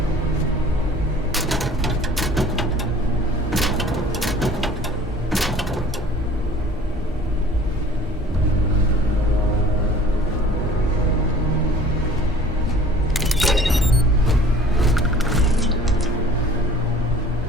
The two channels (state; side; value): normal; both; correlation 0.48